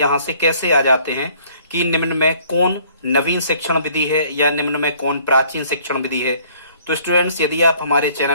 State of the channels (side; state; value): both; inverted; correlation -0.58